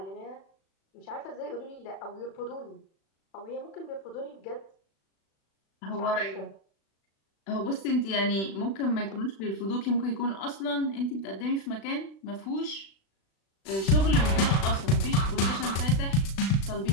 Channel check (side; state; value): right; late; 36 ms